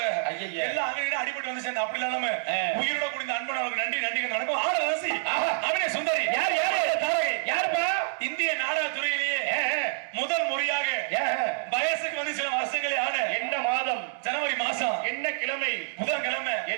எல்லாம் அங்கே அடிபட்டு வந்து சேர்ந்து அப்படி இல்லாம உயிரோட குடிந்த அன்பனவர்களுக்கு நன்றி நன்றி நடக்கும். ஆட ரசி அவனே சுந்தரி யார் யாருப்பா? இந்திய நாடக துறையிலேயே முதல் முறையாக வயசுக்கு வந்து சில வருஷங்களே ஆன என்ன மாதம்? ஜனவரி மாசம். என்ன கிழமை? புதன்கிழமை.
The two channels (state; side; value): silent; left; digital silence